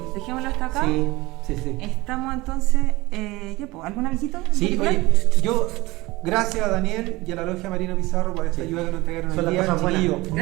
dejémoslo hasta acá. Sí. Estamos entonces, ¿algún avisito? Sí, ¿En particular? oye, yo, gracias a Daniel y a la Logia Marino Pizarro por esta Sí. ayuda que nos entregaron Son hoy las día. cosas buenas. Chiquillos,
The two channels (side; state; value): left; quieter; 21.0 dB